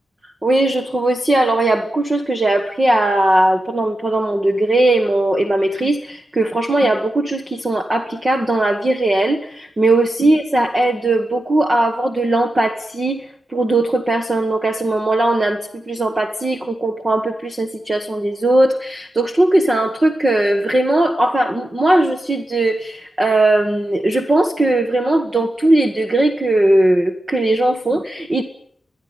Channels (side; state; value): both; normal; correlation 0.90